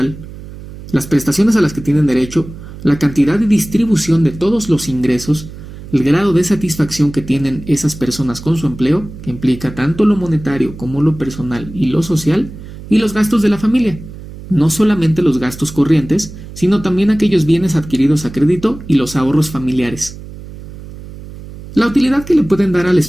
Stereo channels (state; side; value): noise; right; hum, 14 dB below the sound